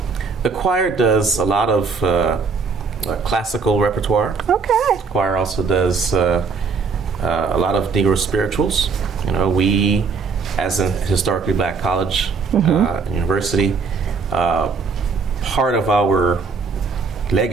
The choir does a lot of classical repertoire. Okay. The choir also does a lot of Negro spirituals. We, as a historically black college, university, part of our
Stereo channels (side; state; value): left; quieter; 4.9 dB